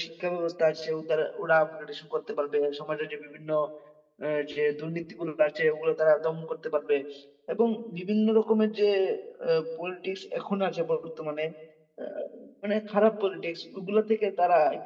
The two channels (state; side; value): identical; both; correlation 1.00